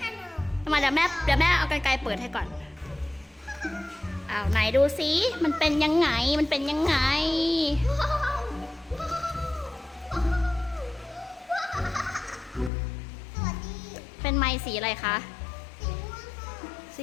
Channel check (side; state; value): right; drops out; at 12.7 s